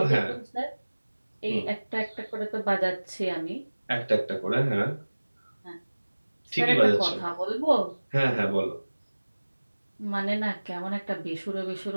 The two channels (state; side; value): inverted; both; correlation -1.00